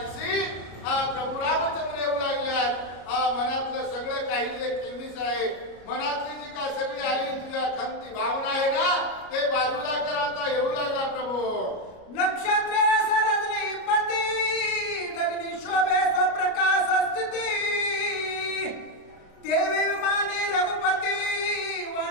आणि प्रभू रामचंद्र येऊ लागल्यात. मनातलं सगळं काही जे केमीस आहे, मनातली जी काय सगळी आली तुझ्या खंती भावना आहे ना, ते बाजूला कर. आता येऊ लागला प्रभू. नक्षत्रे सरजनी पती गगनी शोभे स्वप्रकाश स्थिती देवी विमानी रघुपती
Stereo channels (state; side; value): late; right; 33 ms